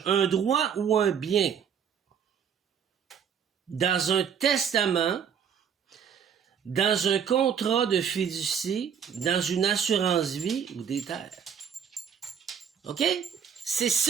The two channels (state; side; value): quieter; left; 7.7 dB